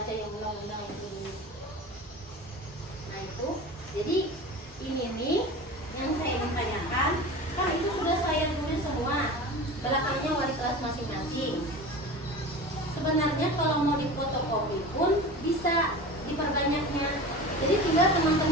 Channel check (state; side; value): normal; both; correlation 0.33